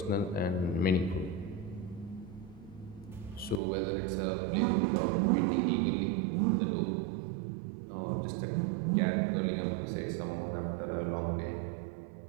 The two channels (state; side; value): drops out; left; at 3.6 s